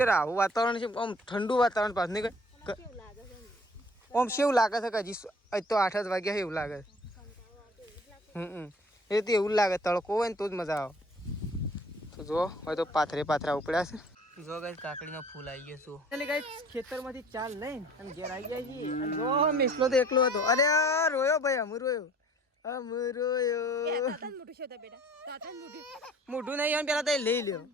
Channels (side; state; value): both; normal; correlation 0.51